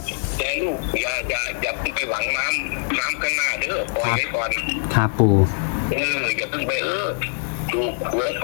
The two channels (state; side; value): silent; right; digital silence